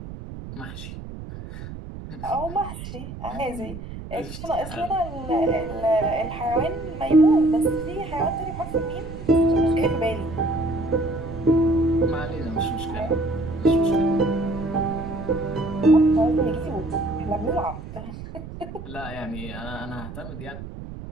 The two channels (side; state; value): right; noise; rumble, 11 dB below the sound